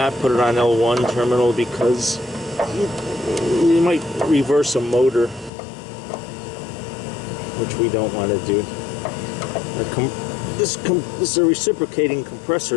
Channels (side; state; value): right; drops out; at 5.5 s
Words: put it on L1 terminal, because you might reverse a motor, which we don't want to do. This is a reciprocating